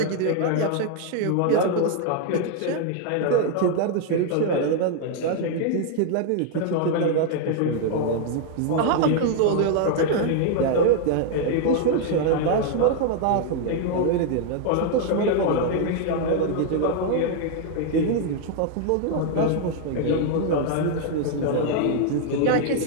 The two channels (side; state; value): both; different; correlation 0.00